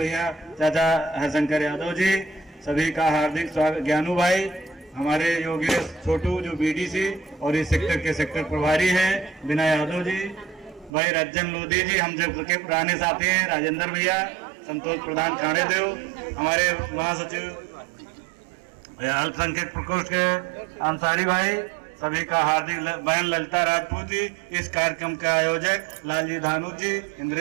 चाचा हरशंकर यादव जी, सभी का हार्दिक स्वागत। ज्ञानू भाई, हमारे योगेश छोटू जो बीडीसी और इस सेक्टर के सेक्टर प्रभारी हैं, बिना यादव जी, भाई रज्जन लोधी जी, हम जब के पुराने साथी हैं, राजेंद्र भैया, संतोष प्रधान खाने देव, हमारे महासचिव अल्पसंख्यक प्रकोष्ठ के अंसारी भाई, सभी का हार्दिक। बहन ललिता राजपूत जी, इस कार्यक्रम के आयोजक लालजी धानु जी,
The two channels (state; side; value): drops out; left; at 10.9 s